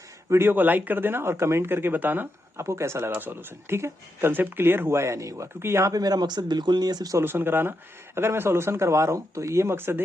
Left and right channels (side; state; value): both; normal; correlation 0.84